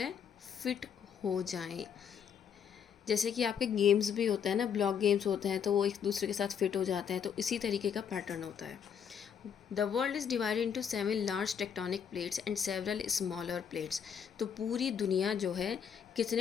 फिट हो जाएं। जैसे कि आपके गेम्स भी होते हैं ना, ब्लॉक गेम्स होते हैं, तो वो एक दूसरे के साथ फिट हो जाते हैं, तो इसी तरीके का पैटर्न होता है। The world is divided into 7 large tectonic plates and several smaller plates. तो पूरी दुनिया जो है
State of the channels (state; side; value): quieter; right; 7.7 dB